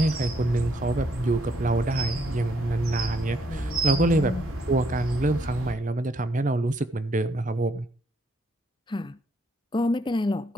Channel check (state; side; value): normal; both; correlation 0.71